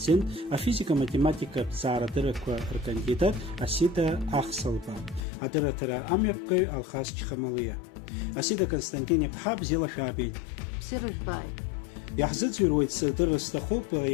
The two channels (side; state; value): right; drops out; at 5.2 s